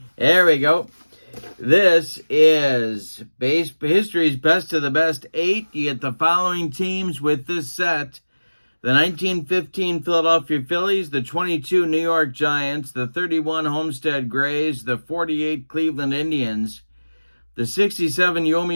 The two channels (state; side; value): inverted; both; correlation -1.00